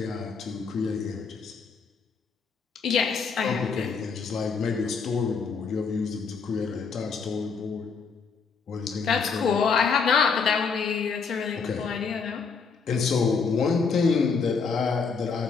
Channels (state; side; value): quieter; right; 5.3 dB